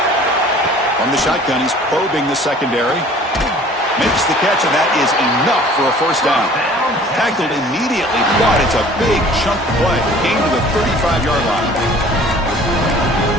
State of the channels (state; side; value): normal; both; correlation 0.50